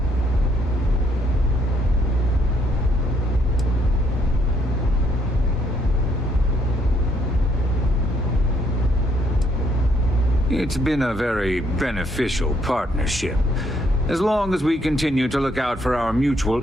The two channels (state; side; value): normal; both; correlation 0.70